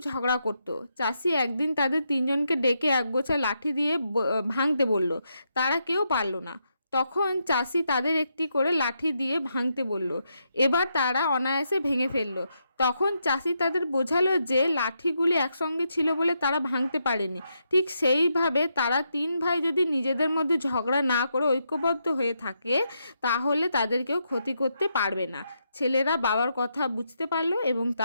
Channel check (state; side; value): inverted; both; correlation -0.81